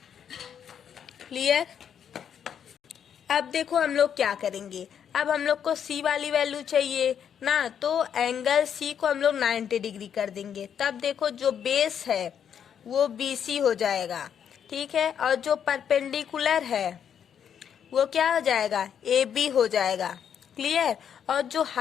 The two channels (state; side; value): quieter; right; 8.4 dB